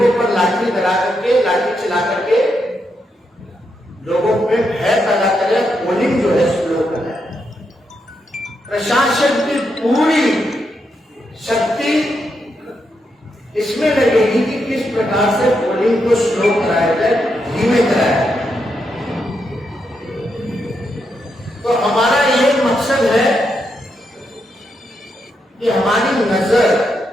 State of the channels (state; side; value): normal; both; correlation 0.82